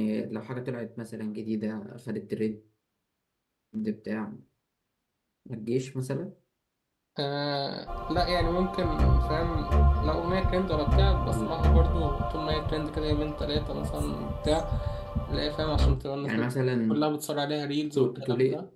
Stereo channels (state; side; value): identical; both; correlation 1.00